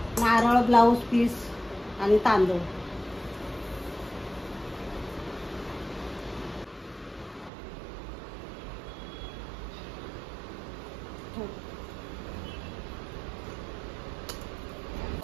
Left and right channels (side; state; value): left; drops out; at 7.5 s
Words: नारळ, ब्लाऊज पीस आणि तांदूळ.